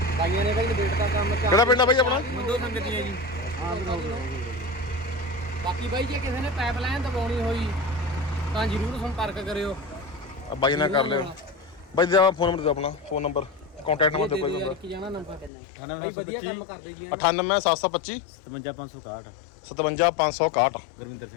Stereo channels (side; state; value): right; drops out; at 15.5 s